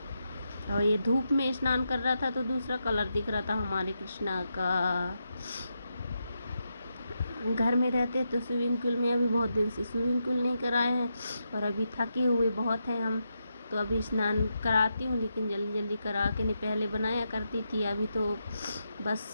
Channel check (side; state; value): both; inverted; correlation -0.85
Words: और ये धूप में स्नान कर रहा था तो दूसरा कलर दिख रहा था हमारे कृष्णा का। घर में रहते तो स्विमिंग पूल में, अभी बहुत दिन से स्विमिंग पूल नहीं कराए हैं, और अभी थके हुए बहुत हैं हम, तो अभी स्नान कराती हूँ, लेकिन जल्दी जल्दी करा के नहीं, पहले बनाया करती थी। अभी तो बस